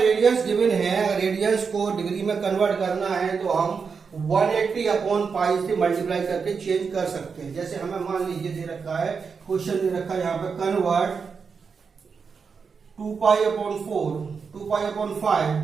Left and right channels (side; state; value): left; quieter; 5.6 dB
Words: गिवन है, रेडियंस को डिग्री में कन्वर्ट करना है, तो हम 180 अपॉन पाई से मल्टीप्लाई करके चेंज कर सकते हैं। जैसे हमें मान लीजिए दे रखा है, क्वेश्चन दे रखा है यहां पे, convert 2π upon 4, 2π upon 5